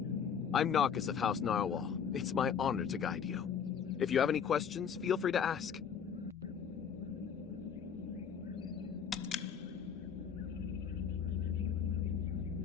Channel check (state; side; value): quieter; right; 7.4 dB